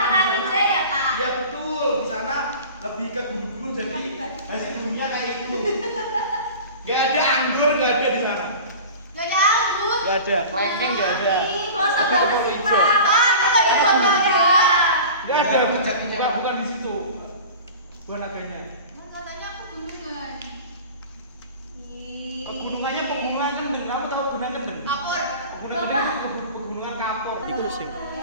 Ya betul, di sana lebih ke gunung-gunung jadi hasil buminya kayak itu. Gak ada anggur, gak ada di sana. Gak ada, kelengkeng gak ada. Gak ada, bukan di situ. Bukan adanya. Pegunungannya pegunungan kendeng. Kamu tahu gunung kendeng? Pegunungan kendeng itu pegunungan kapur. Itu sing.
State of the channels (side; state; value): both; inverted; correlation -0.37